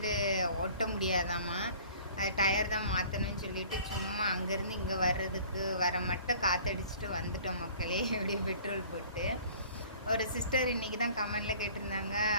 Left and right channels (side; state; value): both; inverted; correlation -0.49